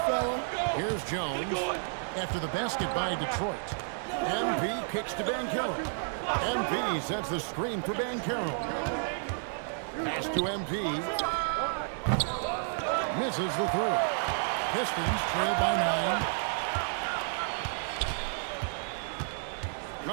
Here's Jones after the basket by Detroit. MP kicks to Banchero. MP sets the screen for Banchero. Pass to MP. Misses the 3. Pistons trail by 9.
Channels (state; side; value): silent; left; digital silence